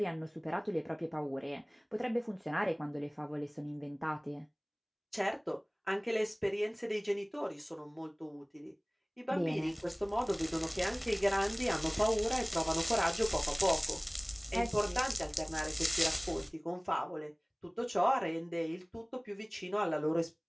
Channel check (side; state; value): both; identical; correlation 1.00